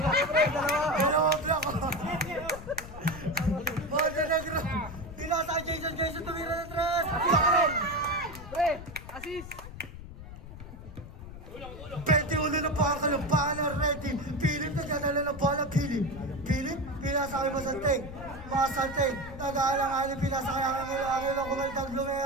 Dalawa block ko. Montenegro. Pinasa kay Jason tumira ng 3. Pre, assist. 21 na po ang kalumpahan ng Red Team. Philip nagdadala ng bola. Philip, pinasa kay Masanteg. Nag-aalang-aling pinasa kay Angelo kumaldang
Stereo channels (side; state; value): left; noise; rumble, 13 dB below the sound